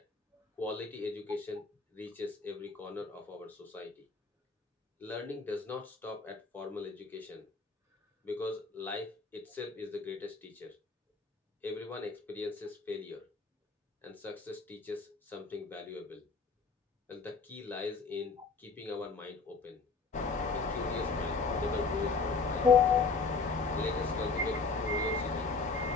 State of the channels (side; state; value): right; quieter; 4.4 dB